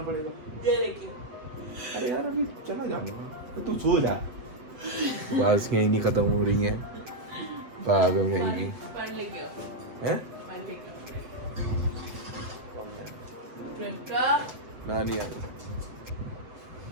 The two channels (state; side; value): late; left; 7.9 ms